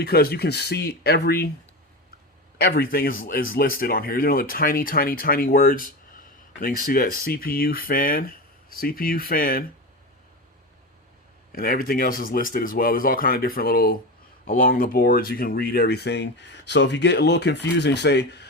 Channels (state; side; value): normal; both; correlation 0.22